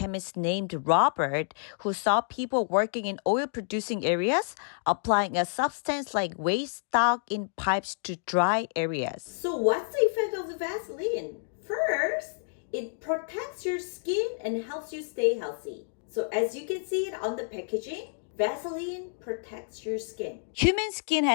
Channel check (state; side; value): silent; right; digital silence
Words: named Robert, who saw people working in oil-producing areas applying a substance like waste stock in pipes to dry areas. So what's the effect of the Vaseline? First, it protects your skin and helps you stay healthy. So as you can see it on the packaging, Vaseline protects your skin. Human skin